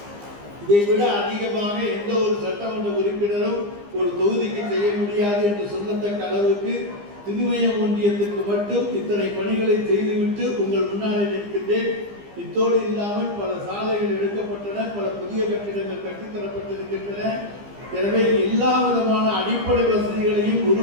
இதை விட அதிகமாக எந்த ஒரு சட்டமன்ற உறுப்பினரும் ஒரு தொகுதிக்கு செய்ய முடியாது என்று சொல்லத்தக்க அளவுக்கு திருமயம் ஒன்றியத்திற்கு மட்டும் இத்தனை பணிகளை செய்துவிட்டு உங்கள் முன்னாலே நிற்கின்றேன். இத்தோடு இல்லாமல் பல சாலைகள் எடுக்கப்பட்டன, பல புதிய கட்டிடங்கள் கட்டித்தரப்பட்டிருக்கின்றன. எனவே எல்லா விதமான அடிப்படை வசதிகளையும்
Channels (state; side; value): late; left; 15 ms